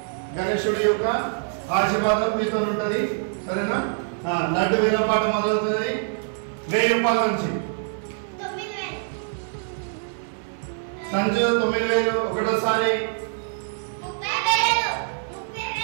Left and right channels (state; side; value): silent; left; 62 dB below the other